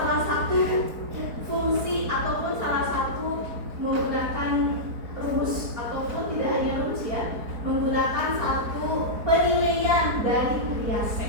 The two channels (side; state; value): left; late; 4.3 ms